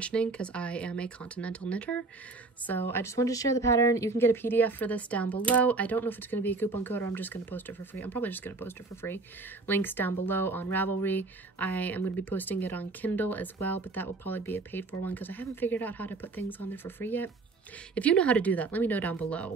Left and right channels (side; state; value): left; quieter; 3.7 dB